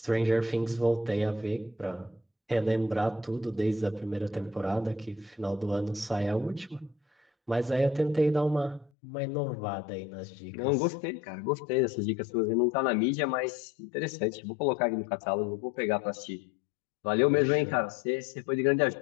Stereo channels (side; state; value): right; drops out; at 8.9 s